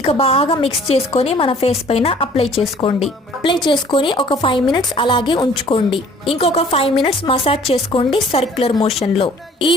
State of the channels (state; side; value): normal; both; correlation 0.54